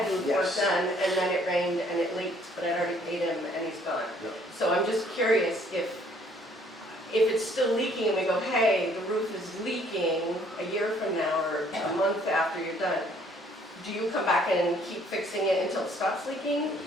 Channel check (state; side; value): normal; both; correlation 0.62